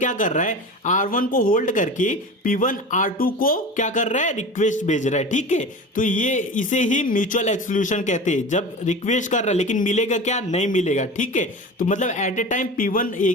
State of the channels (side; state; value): both; normal; correlation 0.32